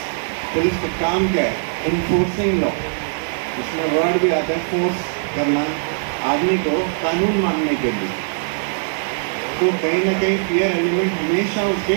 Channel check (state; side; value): silent; left; digital silence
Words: पुलिस का काम क्या है? Enforcing law. इसमें वर्ड भी आता है फोर्स करना आदमी को कानून मानने के लिए। तो कहीं ना कहीं फियर एलिमेंट हमेशा